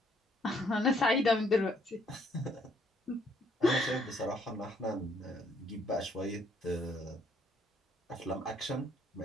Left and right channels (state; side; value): normal; both; correlation 0.66